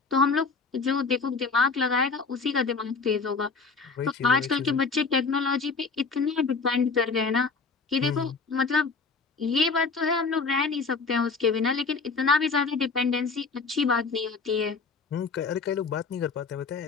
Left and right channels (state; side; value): quieter; right; 4.6 dB